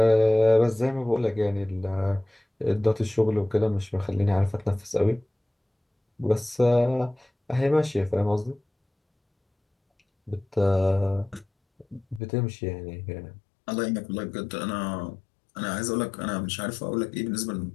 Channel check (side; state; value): right; drops out; at 12.2 s